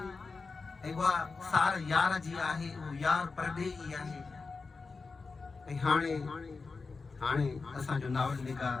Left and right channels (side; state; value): right; quieter; 4.3 dB